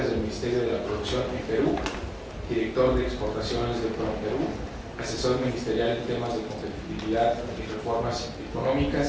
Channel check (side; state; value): both; identical; correlation 1.00